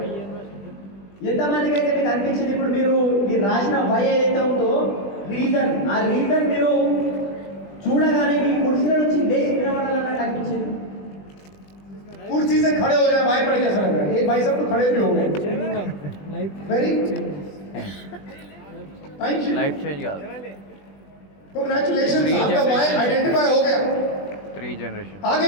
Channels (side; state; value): right; late; 20 ms